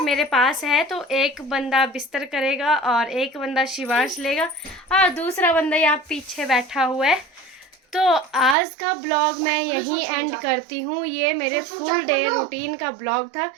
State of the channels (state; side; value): drops out; left; at 8.6 s